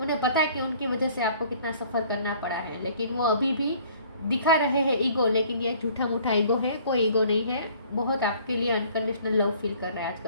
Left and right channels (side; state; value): both; inverted; correlation -0.56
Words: पता है कि उनकी वजह से आपको कितना सफ़र करना पड़ा है, लेकिन वो अभी भी दिखा रहे हैं ईगो, लेकिन ये झूठा मूठा ईगो है, कोई ईगो नहीं है। बहुत आपके लिए अनकंडीशनल लव फील कर रहे हैं